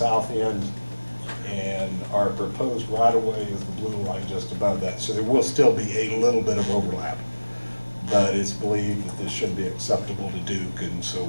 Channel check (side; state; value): both; inverted; correlation -1.00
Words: end, and our proposed right-of-way is the blue line just above that. So there will still be a little bit of overlap, but it's believed that this should be acceptable to Duke, and so